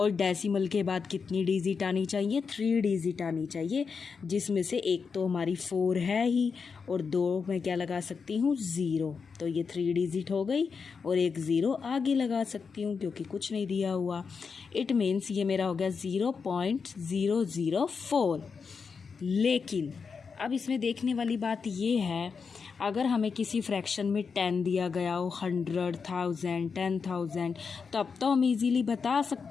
डेसिमल के बाद कितनी डिजिट आनी चाहिए, 3 डिजिट आनी चाहिए, जिसमें से एक तो हमारी 4 है ही, और 2 मैं क्या लगा सकती हूँ, 0। तो ये 3 डिजिट हो गई, और एक 0 आगे लगा सकती हूँ क्योंकि कुछ नहीं दिया हुआ। इट मीन्स ये मेरा हो गया 0.004। लेकिन अब इसमें देखने वाली बात ये है, अगर हमें किसी फ्रैक्शन में 10 दिया गया हो, 100, 1000, 10,000, तब तो हम इजीली बता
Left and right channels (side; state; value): right; quieter; 5.5 dB